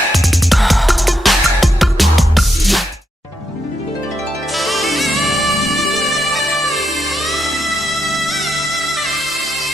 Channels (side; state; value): both; normal; correlation 0.81